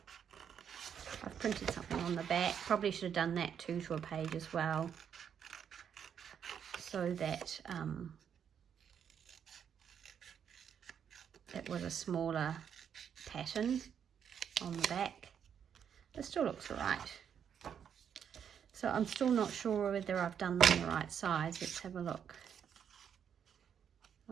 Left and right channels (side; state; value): left; quieter; 8.1 dB